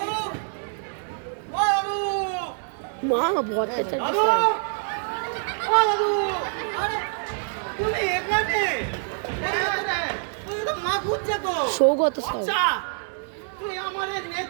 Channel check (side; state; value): left; silent; 61 dB below the other